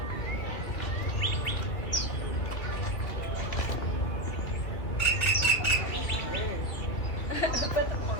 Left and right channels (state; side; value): late; right; 2.9 ms